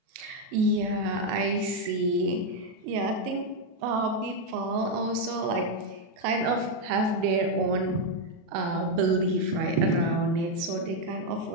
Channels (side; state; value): left; late; 37 ms